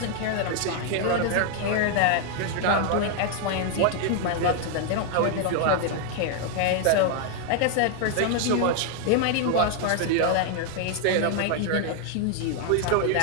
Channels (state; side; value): different; both; correlation 0.00